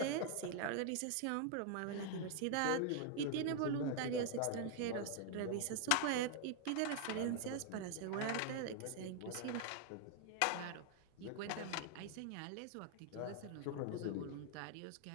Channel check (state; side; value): different; both; correlation 0.00